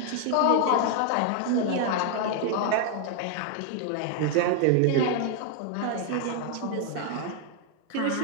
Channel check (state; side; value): different; both; correlation 0.00